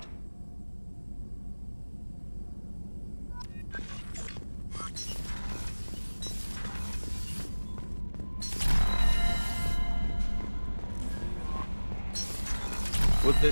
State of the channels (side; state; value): both; inverted; correlation -1.00